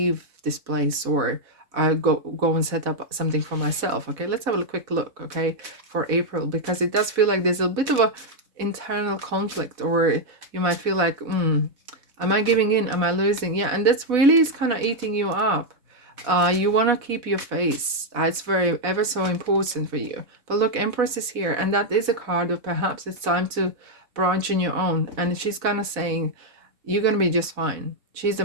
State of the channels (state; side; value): late; left; 4.1 ms